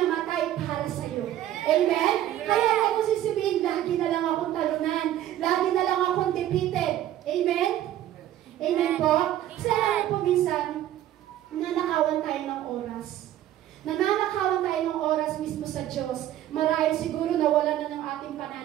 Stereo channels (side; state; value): left; quieter; 12.6 dB